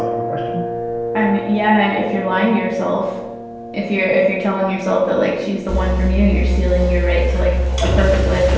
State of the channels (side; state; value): both; identical; correlation 1.00